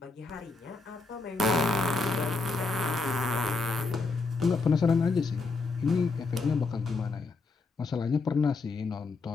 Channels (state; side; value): quieter; right; 3.9 dB